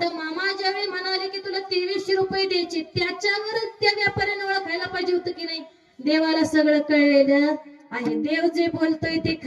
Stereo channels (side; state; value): both; identical; correlation 1.00